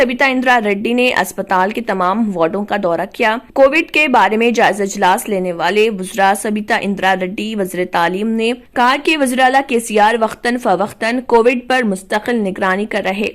इंदिरा रेड्डी ने अस्पताल के तमाम वार्डों का दौरा किया। कोविड के बारे में जायजा इजलास लेने वाले वज़रा सबिता इंदिरा रेड्डी वजीर तालीम ने कहा कि वज़ीर आला KCR वक्तन फवक्तन कोविड पर मुस्तकिल निगरानी कर रहे।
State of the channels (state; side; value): identical; both; correlation 1.00